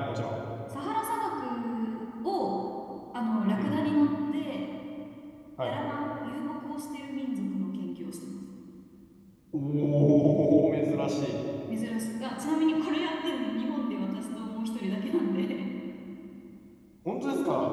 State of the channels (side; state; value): both; identical; correlation 1.00